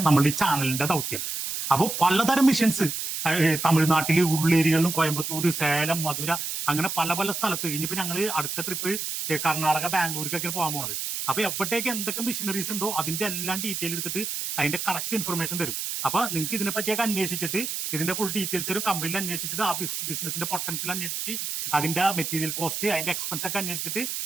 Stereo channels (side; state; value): right; noise; hiss, 4 dB below the sound